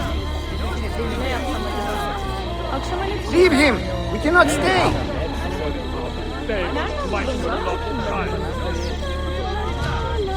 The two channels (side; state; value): both; identical; correlation 1.00